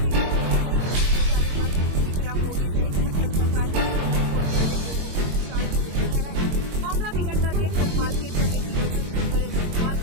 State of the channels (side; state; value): left; late; 22 ms